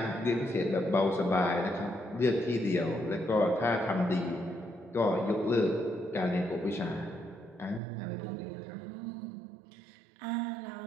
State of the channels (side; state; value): left; drops out; at 7.8 s